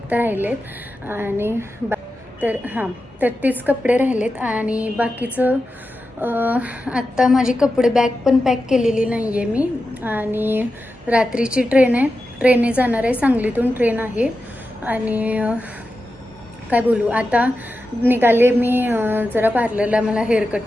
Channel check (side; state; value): both; normal; correlation 0.91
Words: राहिलेत आणि तर तेच कपडे राहिलेत आणि बाकीचं आत्ता माझी कपडे बॅग पण पॅक केलेली नाही आहे मी. आणि रात्रीची ट्रेन आहे, ट्रेनने जाणार आहे, सांगलीतून ट्रेन आहे. आणि काय बोलू, आता निघाले मी जरा पार्लरला. मला हेअर कट